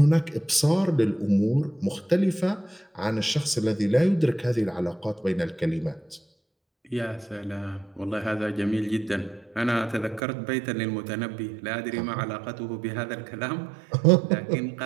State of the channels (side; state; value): left; drops out; at 10.2 s